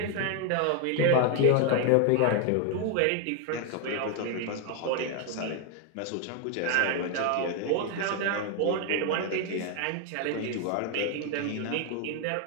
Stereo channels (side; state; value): both; different; correlation 0.01